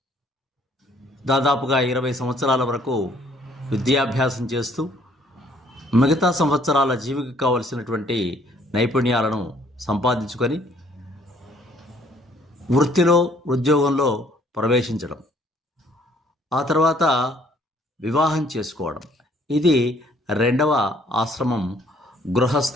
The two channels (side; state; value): both; normal; correlation 0.61